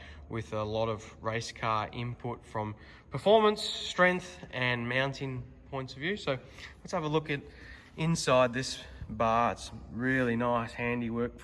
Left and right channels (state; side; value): identical; both; correlation 1.00